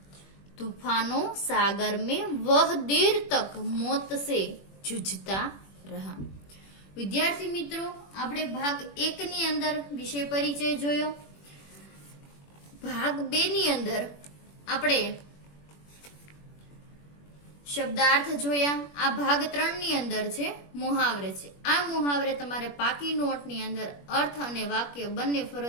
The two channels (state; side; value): late; right; 21 ms